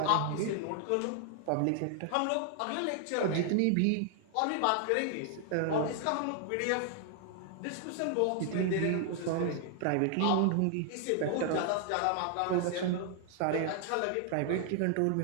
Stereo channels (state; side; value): different; both; correlation 0.00